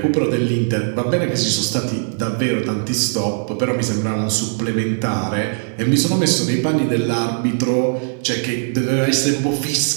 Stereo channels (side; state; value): left; silent; 66 dB below the other